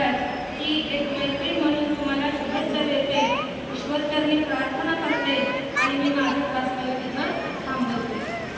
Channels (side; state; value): both; identical; correlation 1.00